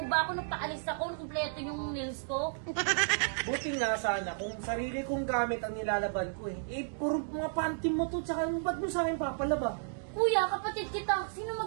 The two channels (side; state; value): left; silent; digital silence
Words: ba ako? Nagpaalis ako, kumpleto yung nails ko. Buti nga sana kung sarili kong gamit ang nilalaban ko eh. Eh, puro mga panty mo to, tsaka ba't mo sa akin papalaba? Kuya, kapatid kita. Sino